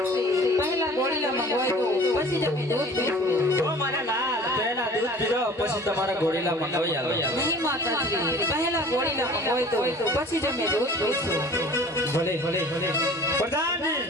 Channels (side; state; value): both; normal; correlation 0.46